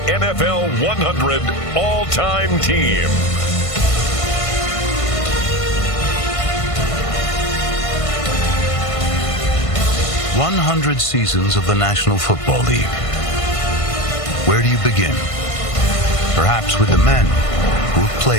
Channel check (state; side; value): late; right; 1.5 ms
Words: NFL 100 All-Time Team. "100 seasons of the National Football League." Where do you begin? Perhaps with the men who have